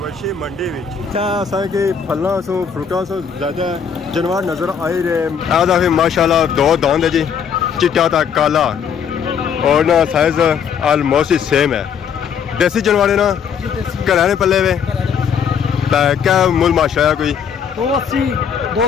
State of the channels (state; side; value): quieter; right; 7.2 dB